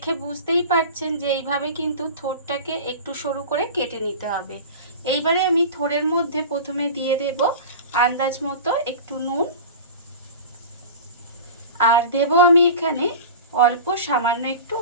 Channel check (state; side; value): inverted; both; correlation -0.33